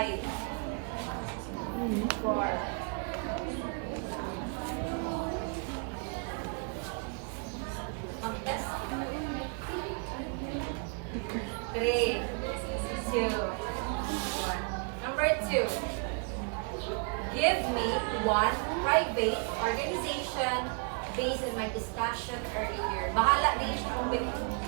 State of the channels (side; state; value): left; quieter; 38.0 dB